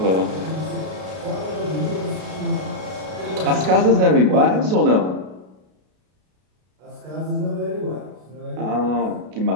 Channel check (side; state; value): left; late; 32 ms